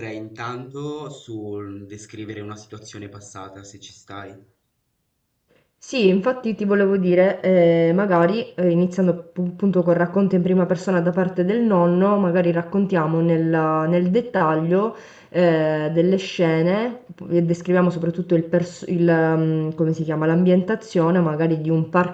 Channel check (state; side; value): identical; both; correlation 1.00